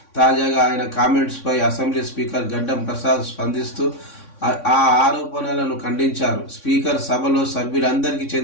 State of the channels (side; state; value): right; late; 3.6 ms